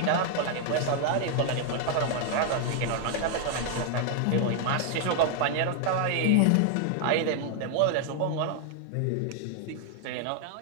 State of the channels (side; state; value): both; different; correlation 0.00